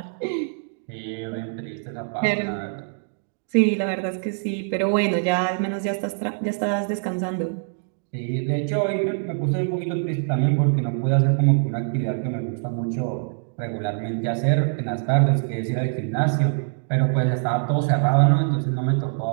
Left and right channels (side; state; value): left; silent; digital silence